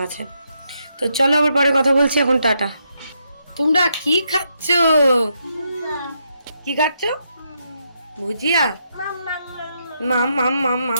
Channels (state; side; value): inverted; both; correlation -0.80